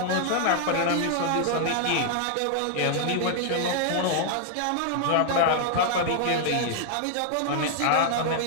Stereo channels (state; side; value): different; both; correlation 0.00